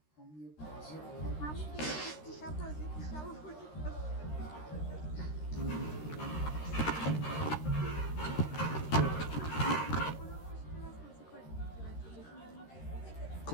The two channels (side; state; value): right; late; 13 ms